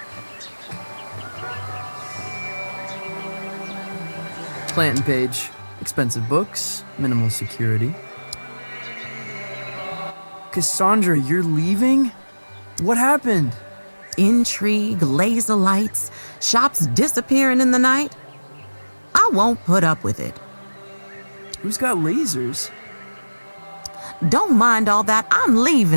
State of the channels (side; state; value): both; inverted; correlation -1.00